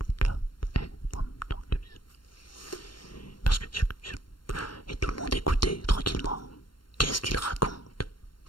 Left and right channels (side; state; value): right; late; 0.72 ms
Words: parce que et tout le monde écoutait tranquillement. Qu'est-ce qu'il raconte?